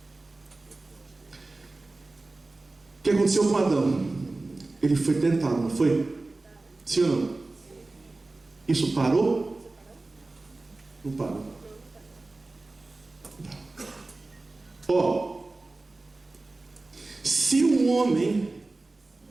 O que aconteceu com Adão? Ele foi tentado, não foi? Sim ou não? Isso parou? Não parou. Ó, se um homem,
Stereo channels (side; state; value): left; quieter; 3.2 dB